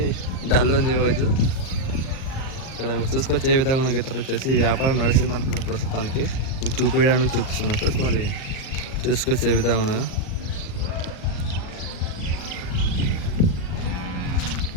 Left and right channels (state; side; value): late; right; 38 ms